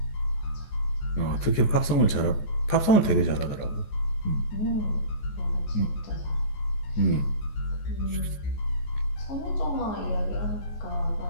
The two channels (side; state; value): right; late; 14 ms